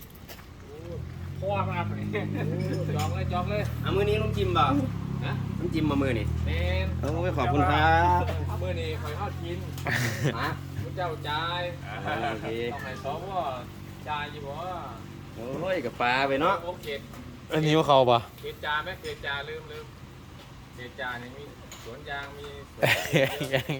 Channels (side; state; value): both; identical; correlation 1.00